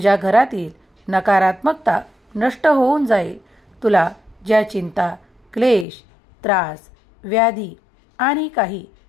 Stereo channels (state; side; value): drops out; right; at 5.9 s